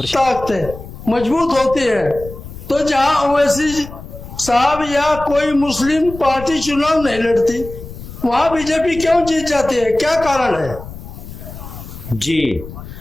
शेयर मजबूत होती है। तो जहाँ ओवैसी साहब या कोई मुस्लिम पार्टी चुनाव नहीं लड़ती, वहाँ बीजेपी क्यों जीत जाती है? क्या कारण है? जी,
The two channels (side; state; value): left; noise; rumble, 13 dB below the sound